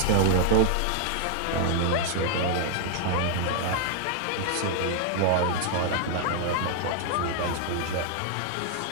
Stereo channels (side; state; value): both; different; correlation 0.00